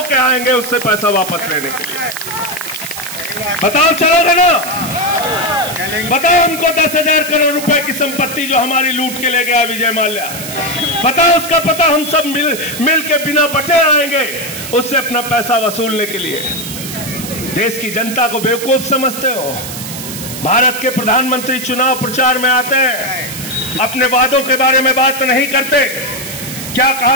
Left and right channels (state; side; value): noise; right; hiss, 9 dB below the sound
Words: आएंगे उससे पैसा वापस लेने के लिए। बताओ चलोगे ना? बताओ हमको 10,000 करोड़ रुपए की संपत्ति जो हमारी लूट के ले गया विजय माल्या, बताओ उसका पता। हम सब मिल के बिना बटे आएंगे उससे अपना पैसा वसूलने के लिए। देश की जनता को बेवकूफ समझते हो। भारत के प्रधानमंत्री चुनाव प्रचार में आते हैं, अपने वादों के बारे में बात नहीं करते। क्या